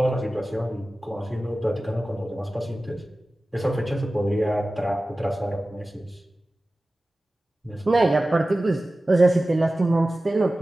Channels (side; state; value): both; normal; correlation 0.96